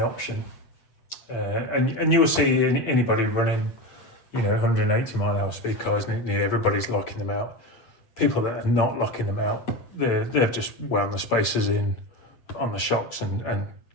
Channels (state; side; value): late; right; 8.1 ms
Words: option. And you'll see anybody running, 180 mile an hour speed cars, nearly everybody's locking them out. People that are not locking them out, they've just wound the spacers in on the shocks and